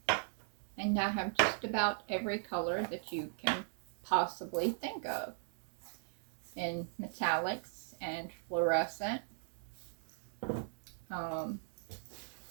and I have just about every color that you can possibly think of, in metallics and fluorescent. There's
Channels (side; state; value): left; silent; digital silence